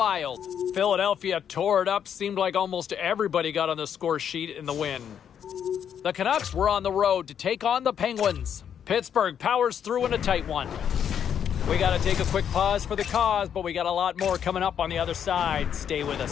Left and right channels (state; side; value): quieter; right; 8.6 dB